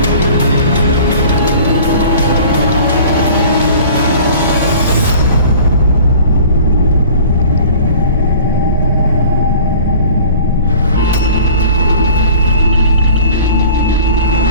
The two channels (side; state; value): both; inverted; correlation -0.45